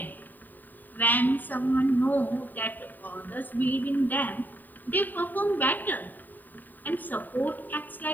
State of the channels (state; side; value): late; right; 0.088 ms